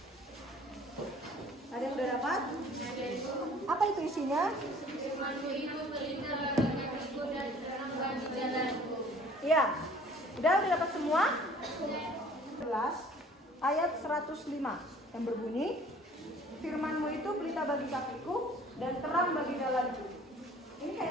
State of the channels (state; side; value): normal; both; correlation 0.52